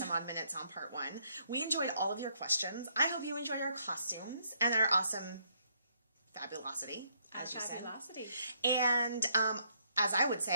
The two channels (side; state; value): both; inverted; correlation -0.71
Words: odd minutes on part 1. We enjoyed all of your questions. I hope you enjoyed our costumes and our awesome fabulosity, as you said. And, as I would